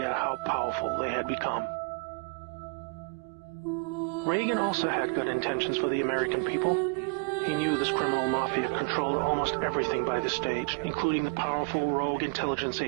how powerful they had become. Reagan also had good intentions for the American people. He knew this criminal mafia controlled almost everything by this stage, including the powerful rogue intelligence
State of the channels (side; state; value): left; quieter; 33.4 dB